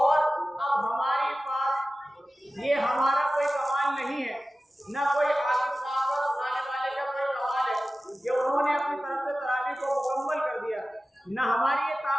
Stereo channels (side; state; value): both; normal; correlation 0.95